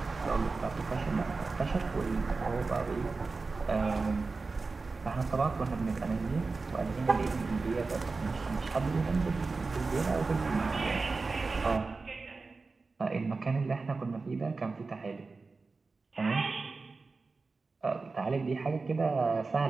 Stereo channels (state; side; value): quieter; left; 4.0 dB